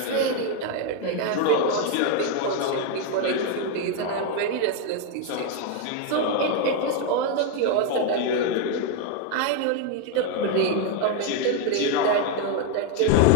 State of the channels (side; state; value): both; different; correlation 0.01